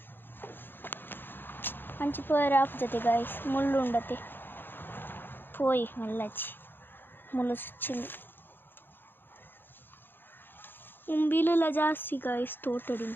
ಹಂಚಿಪೋಯರ ಆಪುಜತೆ ಗಾಯ್ಸ್ ಮುಳ್ಳು ಉಂಡತೆ ಪೋಯಿ ಮಲ್ಲಚ್ಚಿ ಮುಳ್ಳು ಸುಚ್ಚಿಂದು ಉಂಬಿಲೆಲ್ಲ ಜಾಸ್ತಿ ಗಾಯ್ಸ್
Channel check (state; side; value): late; right; 0.098 ms